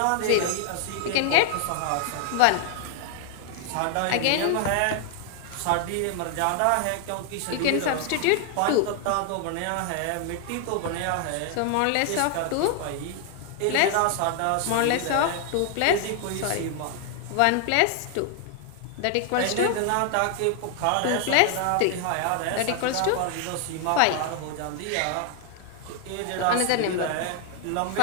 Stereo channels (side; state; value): both; different; correlation 0.00